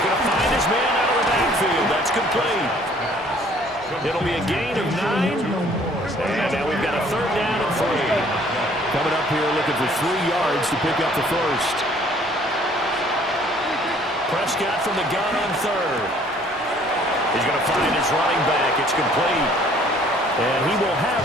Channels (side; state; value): both; normal; correlation 0.58